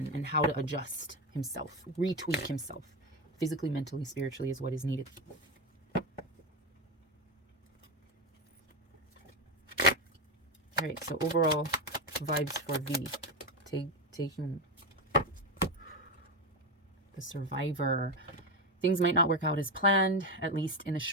how to adjust himself, retweak himself, physically, mentally, spiritually, is what is needed. All right, so overall vibes for V. Taehyung, the survivor. Things might not work out as planned, at least in the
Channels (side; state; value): both; normal; correlation 0.13